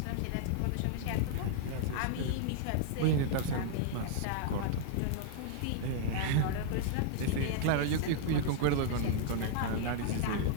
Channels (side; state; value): both; different; correlation -0.01